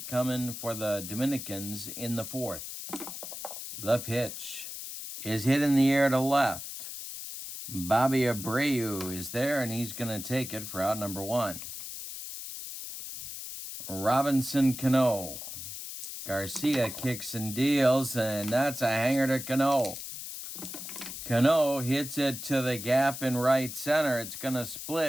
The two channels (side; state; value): left; noise; hiss, 9 dB below the sound